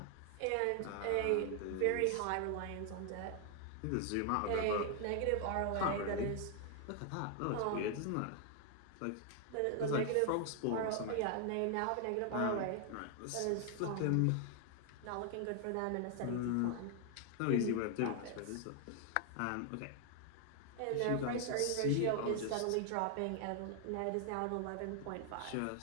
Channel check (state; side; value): different; both; correlation 0.00